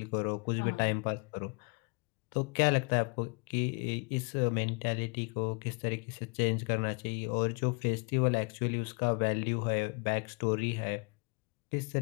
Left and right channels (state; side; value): quieter; right; 33.7 dB